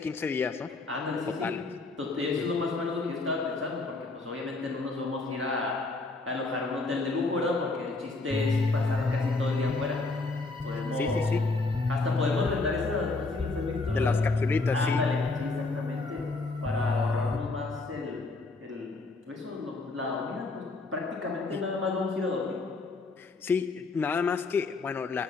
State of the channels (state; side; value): quieter; right; 3.5 dB